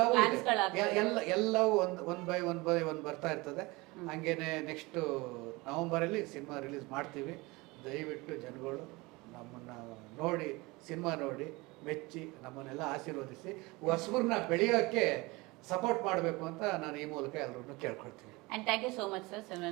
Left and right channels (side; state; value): left; quieter; 23.5 dB